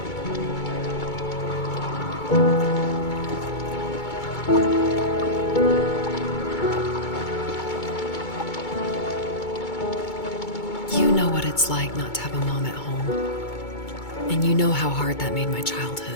You know what it's like not to have a mom at home, and you know how hard that made my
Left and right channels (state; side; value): late; right; 2.2 ms